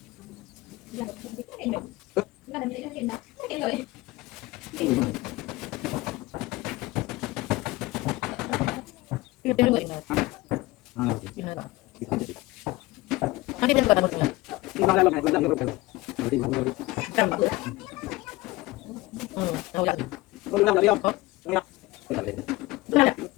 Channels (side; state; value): right; quieter; 20.2 dB